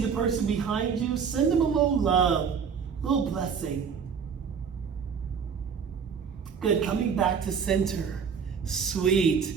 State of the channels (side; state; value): left; quieter; 6.5 dB